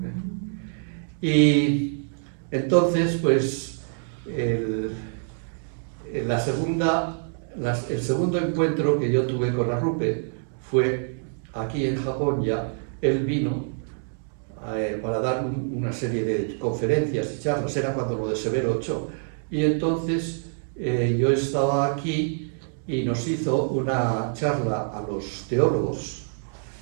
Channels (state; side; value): silent; left; 61 dB below the other